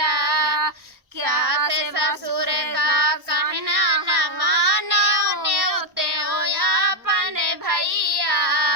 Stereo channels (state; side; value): late; left; 1.1 ms